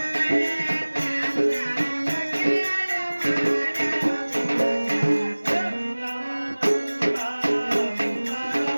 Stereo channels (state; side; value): inverted; both; correlation -1.00